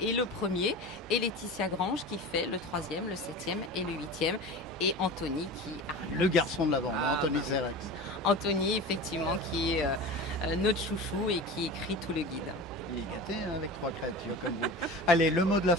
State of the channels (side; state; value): both; normal; correlation 0.32